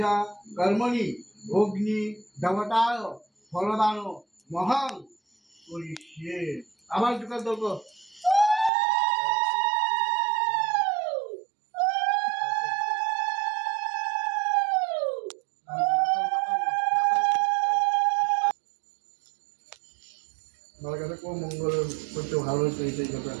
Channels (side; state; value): left; drops out; at 8.7 s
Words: কর্মণি অগ্নি দেবতায় ফলদান মহান করিষ্যে। আবার দুটো দোক মঙ্গল করতে ভালো হচ্ছে এই কথা।